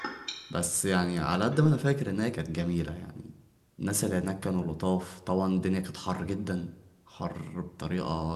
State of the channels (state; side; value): identical; both; correlation 1.00